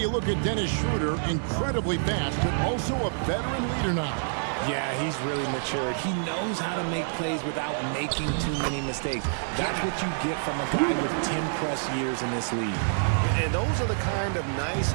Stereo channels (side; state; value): left; silent; digital silence